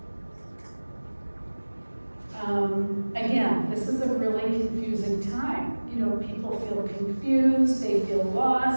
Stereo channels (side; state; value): both; inverted; correlation -1.00